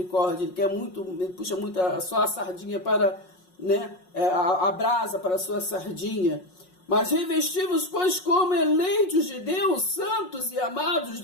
ele quer muito, ele puxa muito só a sardinha para, né, a brasa para a sua sardinha. Mas revesti-vos, pois, como eleitos de Deus, santos e amados,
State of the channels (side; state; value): right; late; 5.5 ms